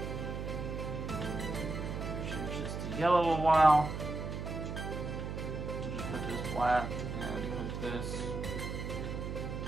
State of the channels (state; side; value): noise; right; hum, 4 dB below the sound